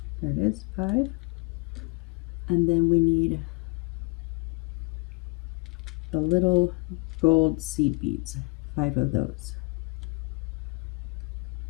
There it is, 5. And then we need the little gold seed beads, 5 of those.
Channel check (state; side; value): quieter; right; 30.1 dB